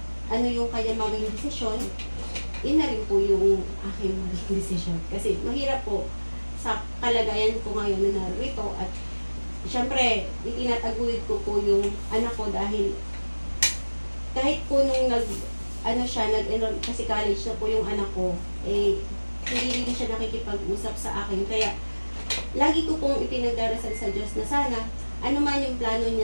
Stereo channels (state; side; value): inverted; both; correlation -1.00